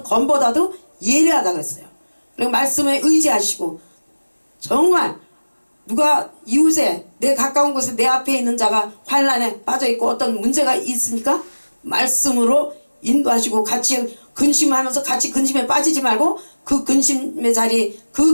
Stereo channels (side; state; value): both; inverted; correlation -1.00